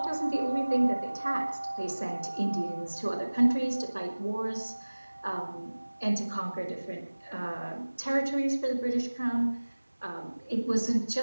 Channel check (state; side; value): inverted; both; correlation -1.00